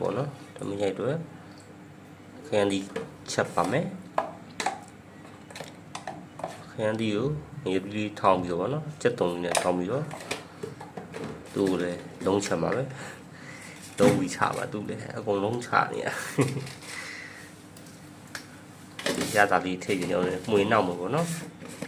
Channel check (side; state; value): both; identical; correlation 1.00